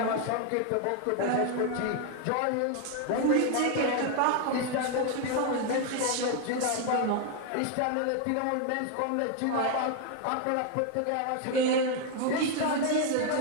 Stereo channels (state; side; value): different; both; correlation 0.01